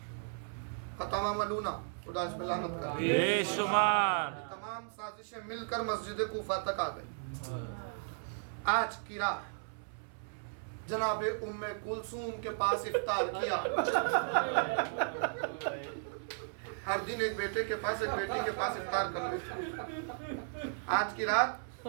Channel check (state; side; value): silent; left; 54 dB below the other